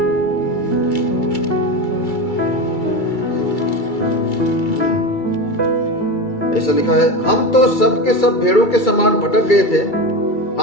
ऐसा लिखा है, हम तो सब के सब भेड़ों के समान भटक गए थे,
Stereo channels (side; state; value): right; late; 2.3 ms